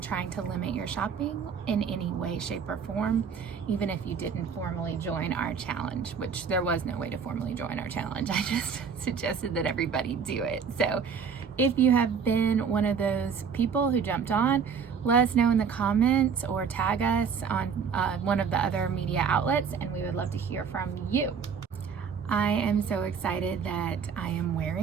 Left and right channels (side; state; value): left; quieter; 6.4 dB